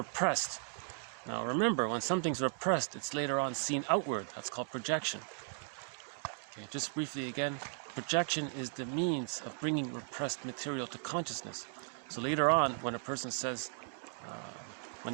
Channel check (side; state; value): left; silent; 53 dB below the other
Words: Now remember, when something's repressed, it's later on seen outward. That's called projection. Okay, just briefly again, projection is the means of bringing repressed material to consciousness. So later on, when a person says, when